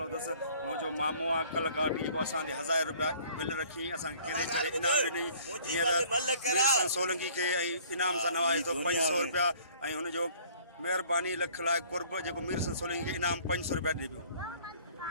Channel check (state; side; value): inverted; both; correlation -0.54